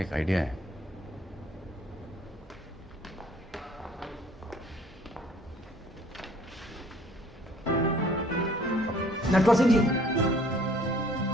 एक आइडिया है। नटवर सिंह जी,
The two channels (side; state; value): both; normal; correlation 0.57